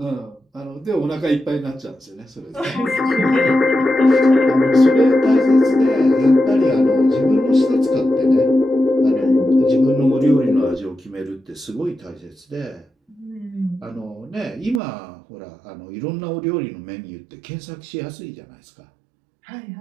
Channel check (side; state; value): left; drops out; at 14.8 s